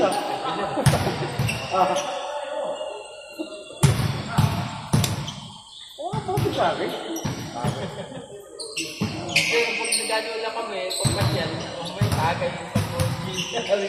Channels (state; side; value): identical; both; correlation 1.00